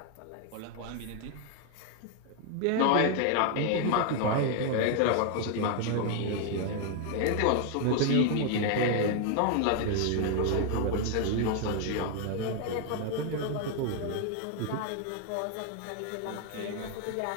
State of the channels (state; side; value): different; both; correlation 0.01